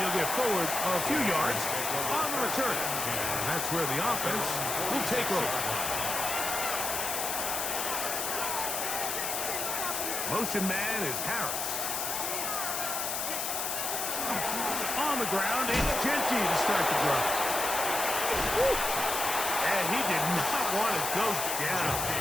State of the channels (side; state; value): left; noise; hiss, 1 dB below the sound